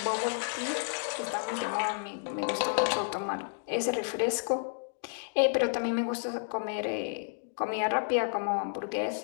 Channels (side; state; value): right; silent; digital silence